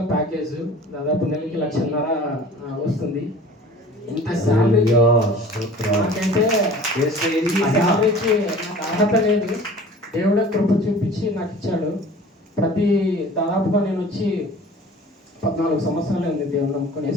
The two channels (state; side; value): normal; both; correlation 0.44